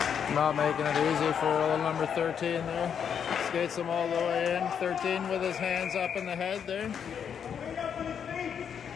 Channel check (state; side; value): quieter; right; 7.8 dB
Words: Not making it easy for little number 13 there. Skates him all the way in. 13 with his hands up in the head there.